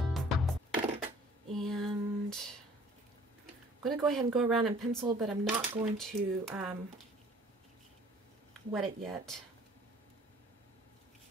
I'm going to go ahead and go around and pencil, but I'm not going to wet it yet.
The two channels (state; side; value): normal; both; correlation 0.54